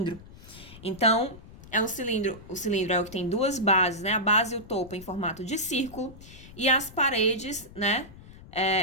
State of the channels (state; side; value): noise; left; rumble, 18 dB below the sound